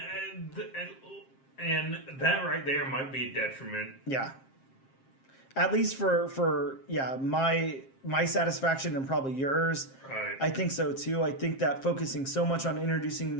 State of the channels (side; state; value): right; late; 7.5 ms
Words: and that right there might be a detriment. Yeah. At least for my satisfaction and probably yours. Right. I think so too. I think that focusing so much on introducing